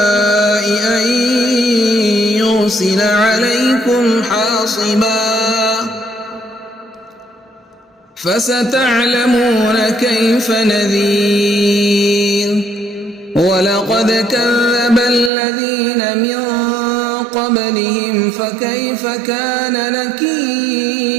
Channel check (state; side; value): drops out; left; at 15.3 s